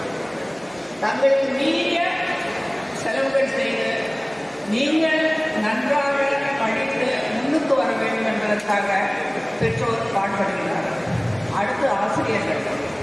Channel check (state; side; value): noise; right; hum, 29 dB below the sound